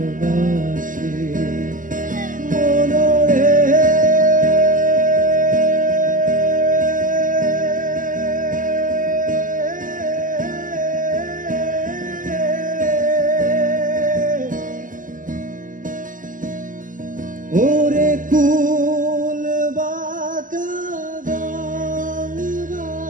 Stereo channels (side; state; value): left; late; 0.38 ms